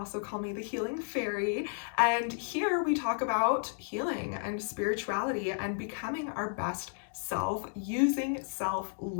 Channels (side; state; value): right; silent; digital silence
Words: call me the Healing Fairy. And here we talk about healing and spirituality and becoming our best self using